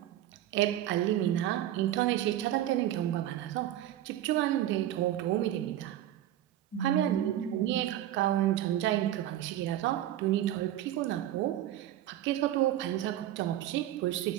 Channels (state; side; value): quieter; left; 12.8 dB